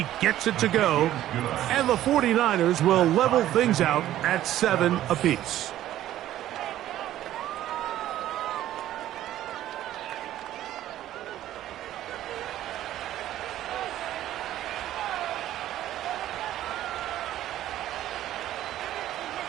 gets it to go, and the 49ers will level things out at 7 apiece.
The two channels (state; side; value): quieter; left; 13.2 dB